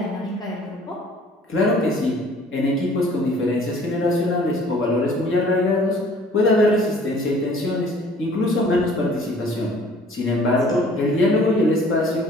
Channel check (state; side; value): normal; both; correlation 0.53